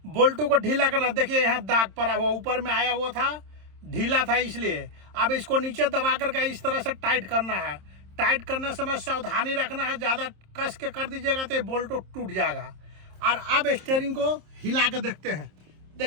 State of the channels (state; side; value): late; left; 27 ms